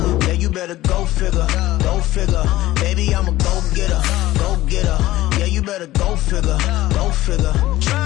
Yeah, you better go figure, go figure. Baby, I'm a go-getter, go-getter. Yeah, you better go figure, go figure.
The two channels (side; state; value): right; quieter; 16.2 dB